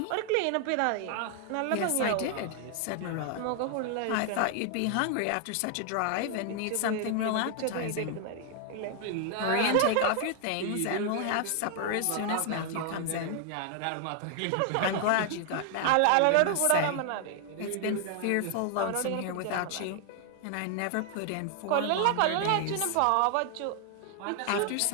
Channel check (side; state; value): both; different; correlation 0.00